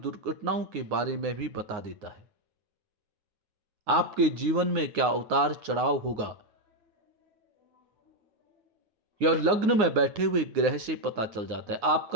के बारे में भी बता देता है। आपके जीवन में क्या उतार चढ़ाव होगा, यह लग्न में बैठे हुए ग्रह से पता चल जाता है।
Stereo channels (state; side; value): late; left; 9.6 ms